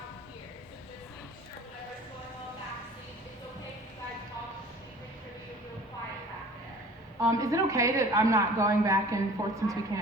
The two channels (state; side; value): normal; both; correlation 0.46